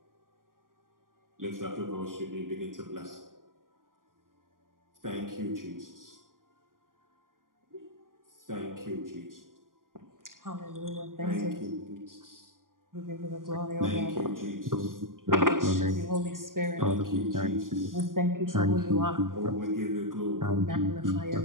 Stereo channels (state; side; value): late; left; 0.90 ms